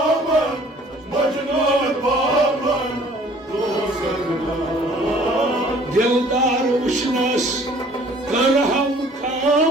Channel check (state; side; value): normal; both; correlation 0.54